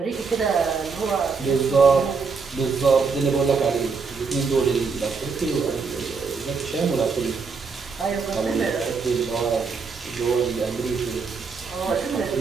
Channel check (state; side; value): quieter; left; 5.1 dB